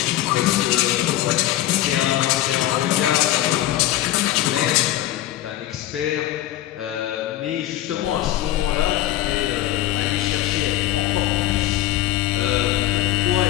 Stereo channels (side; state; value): right; quieter; 14.4 dB